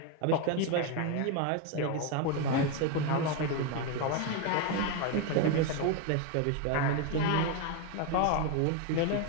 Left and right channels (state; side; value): different; both; correlation 0.02